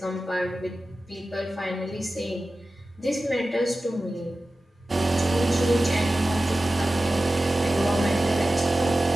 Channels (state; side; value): normal; both; correlation 0.95